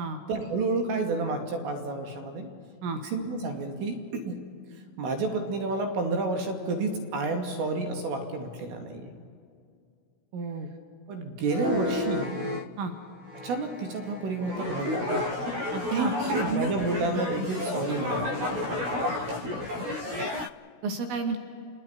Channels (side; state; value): left; late; 16 ms